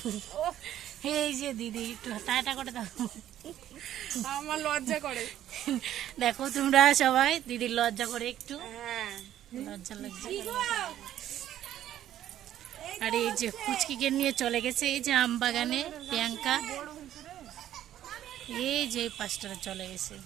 এই যে দিদি একটু টাটা করে দাও। আমার লজ্জা করে। দেখো তোমরা সবাই, দিদির লজ্জা করে একটু, লজ্জা লজ্জা। আর এই যে ফুচকিকে নিয়ে চলে গেছে এই যে আম বাগানে প্রিয়াঙ্কা। এই যে পাঁচটা চলে গেছে।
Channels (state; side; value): quieter; left; 11.9 dB